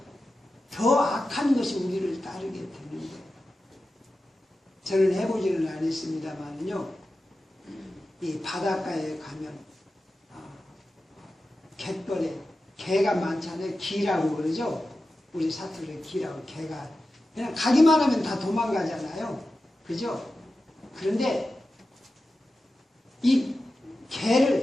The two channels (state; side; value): normal; both; correlation 0.93